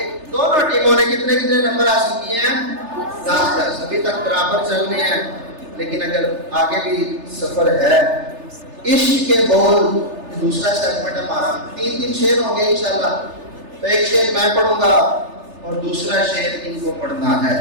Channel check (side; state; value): left; late; 3.3 ms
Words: دونوں ٹیموں نے کتنے نمبر حاصل کیے ہیں؟ 10. ابھی تک برابر چل رہے ہیں، لیکن اگر آگے بھی سفر ہے. عشق کے بول دوسرا سیگمنٹ ہے ہمارا. 3 شعر ہوں گے انشاءاللہ. تو ایک شعر میں پڑھوں گا اور دوسرا شعر ان کو پڑھنا ہے.